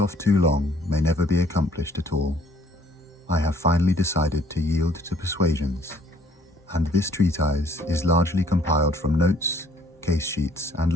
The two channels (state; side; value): normal; both; correlation 0.61